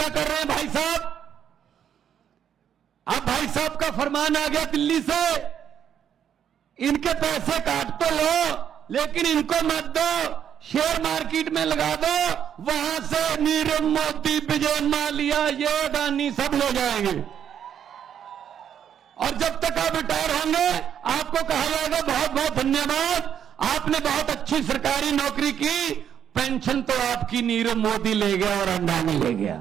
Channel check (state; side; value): quieter; left; 8.9 dB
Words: कर रहे हैं भाई साहब, अब भाई साहब का फरमान आ गया दिल्ली से, इनके पैसे काट तो लो लेकिन इनको मत दो, शेयर मार्केट में लगा दो, वहां से नीरव मोदी, विजय माल्या, ये अडानी सब ले जाएंगे। और जब तक आप रिटायर होंगे आपको कहा जाएगा बहुत बहुत धन्यवाद, आपने बहुत अच्छी सरकारी नौकरी की, पेंशन तो आपकी नीरव मोदी ले गया और अडानी ले